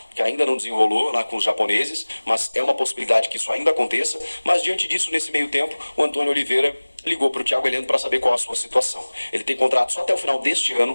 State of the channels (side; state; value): both; inverted; correlation -1.00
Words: que ainda não desenrolou lá com os japoneses, mas é uma possibilidade que isso ainda aconteça. Mas diante disso, nesse meio tempo, o Antônio Oliveira ligou para o Thiago Heleno para saber qual a sua situação. Ele tem contrato só até o final deste